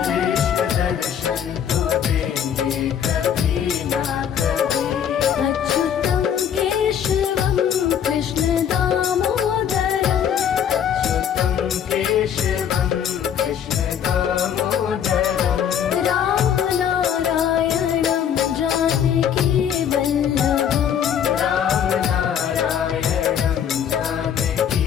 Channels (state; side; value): quieter; right; 8.7 dB